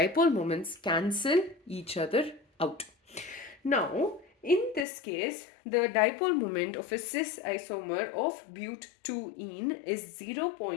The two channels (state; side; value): drops out; right; at 4.9 s